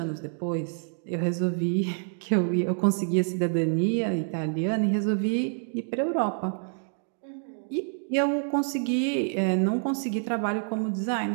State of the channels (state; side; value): silent; left; 60 dB below the other